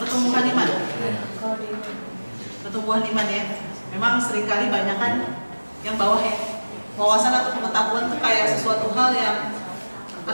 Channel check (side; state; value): both; inverted; correlation -1.00